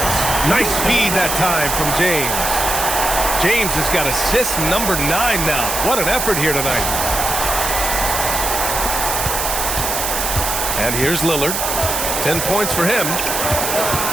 Nice feed that time from James. James has got assist number 9 now. What an effort here tonight. And here's Lillard. 10 points for him.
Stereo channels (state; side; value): noise; right; hiss, 1 dB below the sound